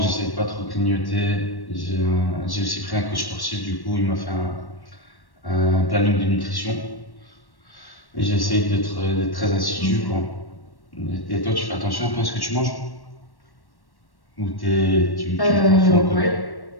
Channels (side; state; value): right; late; 1.1 ms